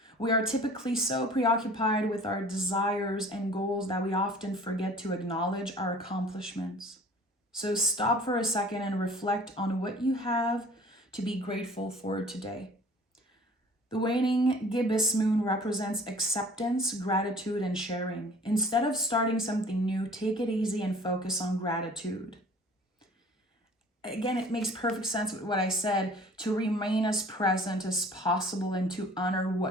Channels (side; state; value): both; normal; correlation 0.49